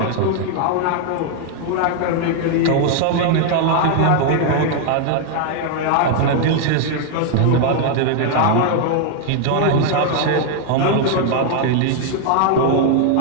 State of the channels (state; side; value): different; both; correlation 0.00